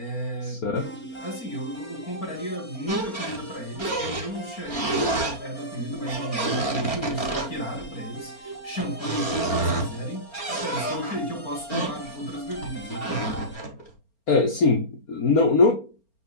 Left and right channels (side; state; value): right; late; 4.3 ms